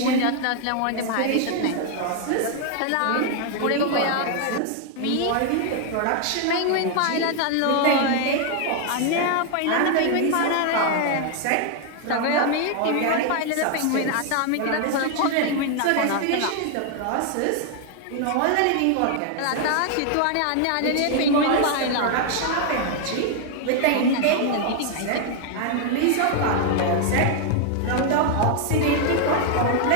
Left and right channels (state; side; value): different; both; correlation 0.00